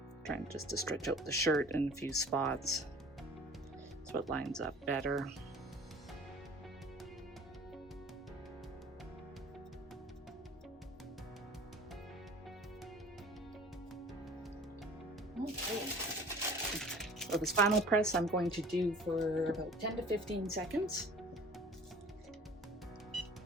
Trying just to stretch out the shirt in a few spots so it lines up better. So this final press I'm going to do for about 10 to 15 seconds.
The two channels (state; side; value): normal; both; correlation 0.46